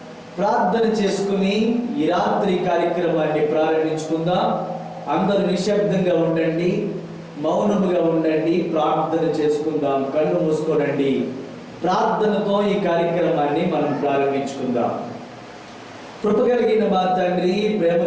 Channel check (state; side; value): identical; both; correlation 1.00